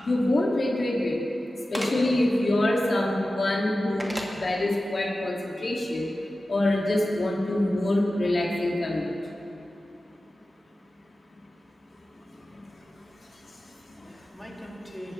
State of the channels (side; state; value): both; normal; correlation 0.94